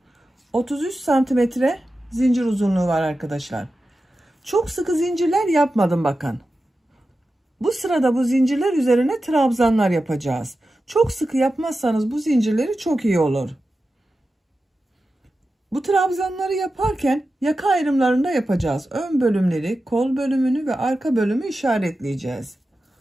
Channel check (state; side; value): normal; both; correlation 0.92